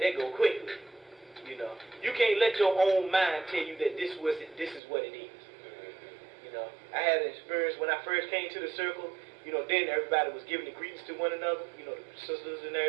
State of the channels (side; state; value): left; drops out; at 4.8 s